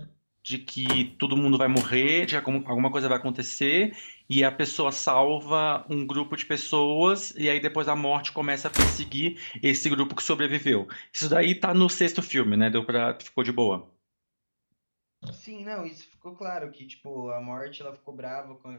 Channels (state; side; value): inverted; both; correlation -1.00